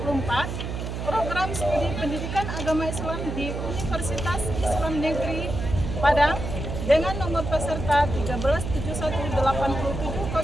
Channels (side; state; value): right; noise; hum, 5 dB below the sound